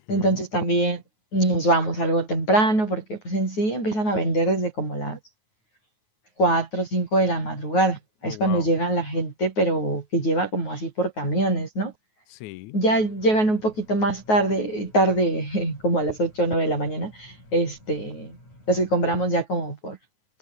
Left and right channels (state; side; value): late; right; 9.4 ms